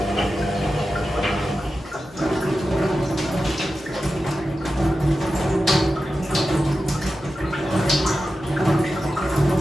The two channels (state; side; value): normal; both; correlation 0.92